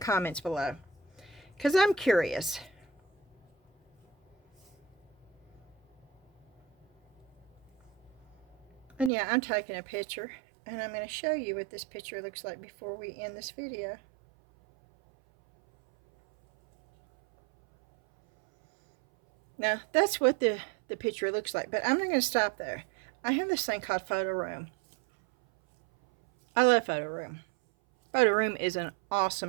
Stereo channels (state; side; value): drops out; left; at 9.1 s